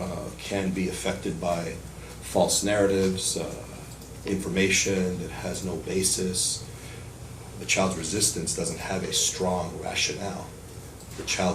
can be affected by false narratives, information that has no basis. The child's resistance doesn't have a strong rationale. The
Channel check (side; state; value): both; identical; correlation 1.00